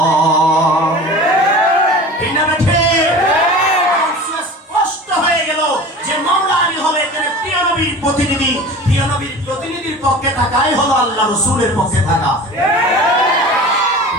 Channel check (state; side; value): normal; both; correlation 0.37